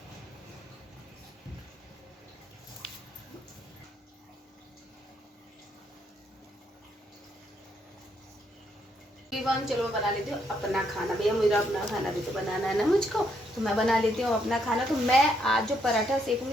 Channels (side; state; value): both; normal; correlation 0.74